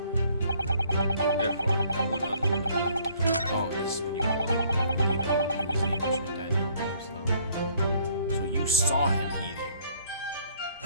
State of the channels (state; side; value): inverted; both; correlation -0.62